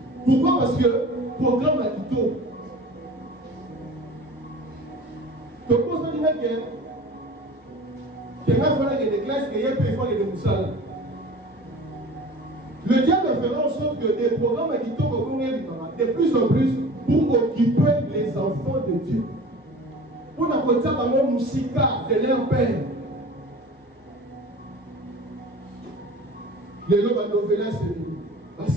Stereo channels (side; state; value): both; normal; correlation 0.40